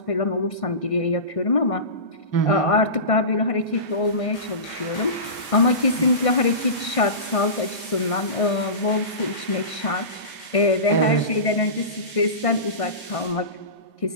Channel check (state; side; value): late; right; 1.6 ms